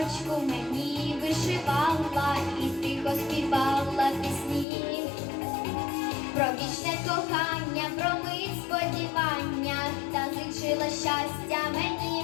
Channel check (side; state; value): right; drops out; at 4.7 s